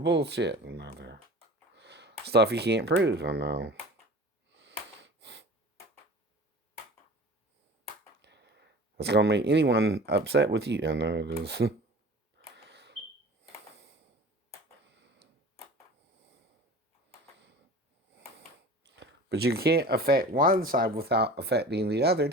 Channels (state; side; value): normal; both; correlation 0.40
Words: Another stuff you can't prove. I know. It's going to make anyone upset with you. I know it is. But you can't affect one side without affecting the other